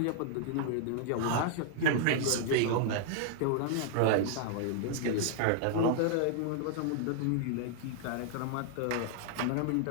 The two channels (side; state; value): both; different; correlation -0.01